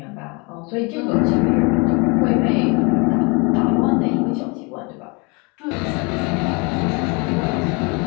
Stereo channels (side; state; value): right; quieter; 30.2 dB